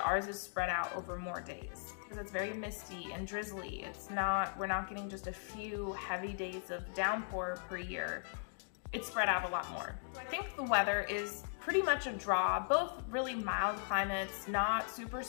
ours is spread out over more days because it's very misty and drizzly. We're not getting just a few heavy days of downpour per year. It's spread out a lot more. So I think the weather is pretty much a draw, both really mild climates, not super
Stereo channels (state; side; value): silent; right; digital silence